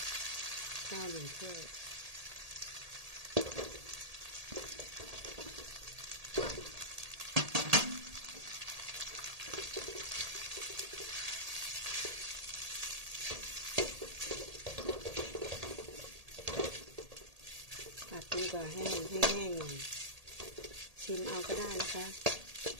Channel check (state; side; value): late; left; 1.8 ms